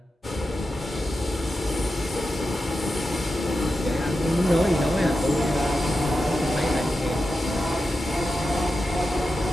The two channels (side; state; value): both; normal; correlation 0.90